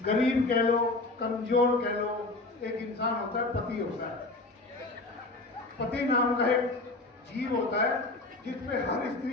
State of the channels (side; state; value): right; quieter; 3.1 dB